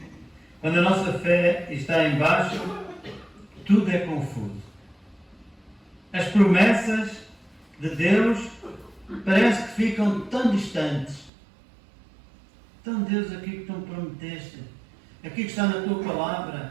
Quando a nossa fé está em baixo, tudo é confuso. As promessas de Deus parece que ficam tão distantes. Então, Deus, aquilo que tu me prometeste, aquilo que está na tua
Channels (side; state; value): left; drops out; at 11.3 s